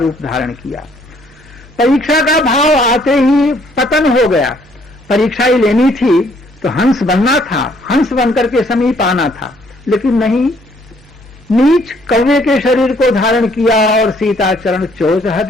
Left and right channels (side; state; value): both; normal; correlation 0.65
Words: धारण किया। परीक्षा का भाव आते ही पतन हो गया। परीक्षा ही लेनी थी तो हंस बनना था, हंस बनकर के समीप आना था, लेकिन नहीं, नीच कौवे के शरीर को धारण किया और सीता चरण चोच